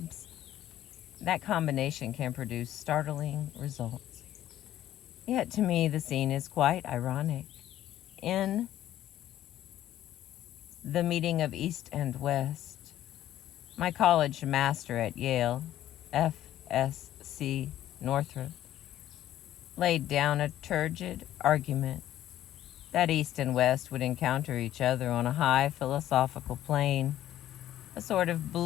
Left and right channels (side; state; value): right; quieter; 12.8 dB